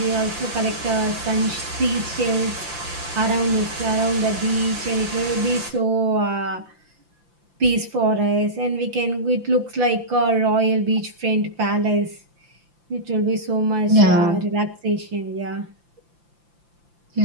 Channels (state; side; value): late; left; 5.8 ms